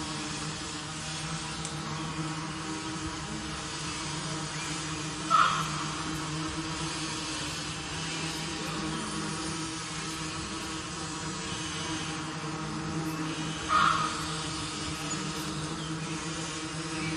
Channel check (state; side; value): identical; both; correlation 1.00